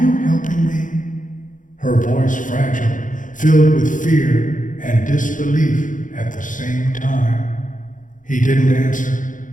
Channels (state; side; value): late; right; 0.38 ms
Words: you helping me?" Her voice fragile, filled with fear and disbelief at the same time. He didn't answer,